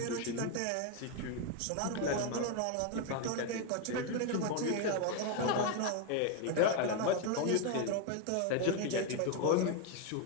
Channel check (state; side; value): different; both; correlation 0.01